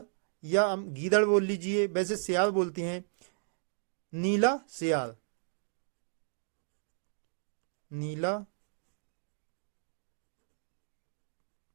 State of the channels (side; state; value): left; silent; digital silence